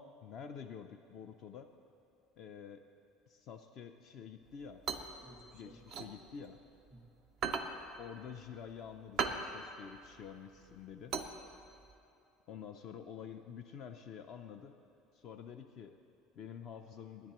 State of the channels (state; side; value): normal; both; correlation 0.40